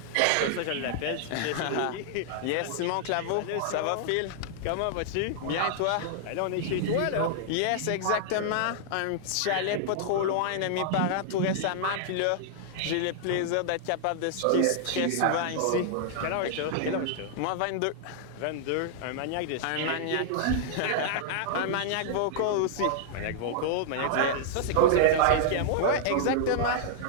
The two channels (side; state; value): both; different; correlation -0.01